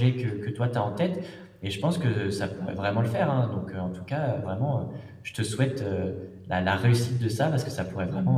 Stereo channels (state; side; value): identical; both; correlation 1.00